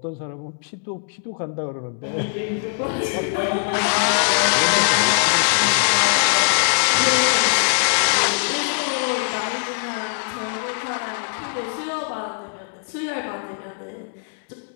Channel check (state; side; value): silent; right; digital silence